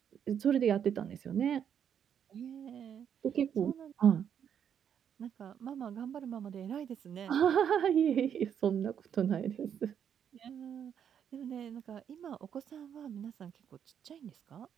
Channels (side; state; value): left; quieter; 8.5 dB